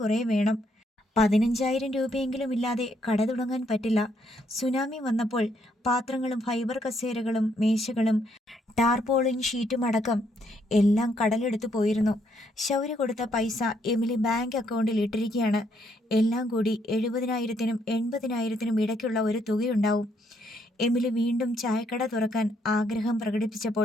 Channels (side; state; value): both; normal; correlation 0.72